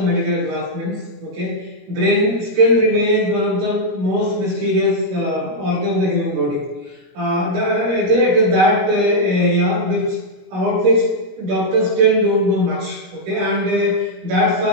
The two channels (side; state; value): left; late; 21 ms